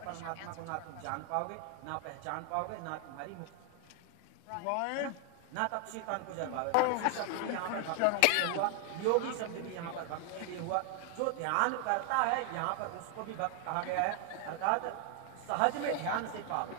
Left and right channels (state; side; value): different; both; correlation 0.00